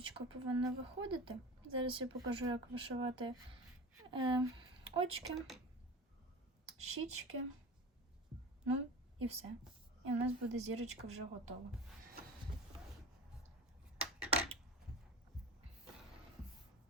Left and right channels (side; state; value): both; normal; correlation 0.33